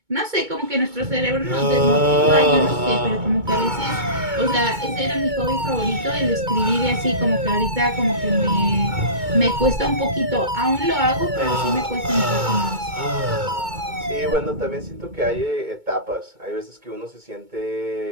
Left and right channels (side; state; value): left; late; 2.2 ms